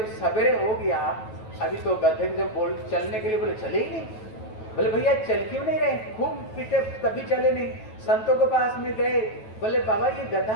सवेरे हो गया, अभी तो गधे जब बोल चलने के लिए, बोले चले ही नहीं। बोले भैया चल क्यों नहीं रहे? खूब पीटे तभी चले नहीं। संतों के पास में गए, बोले बाबा ये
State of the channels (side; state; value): right; late; 9.2 ms